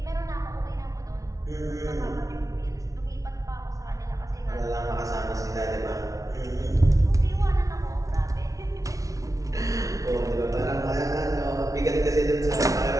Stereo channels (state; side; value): late; left; 0.17 ms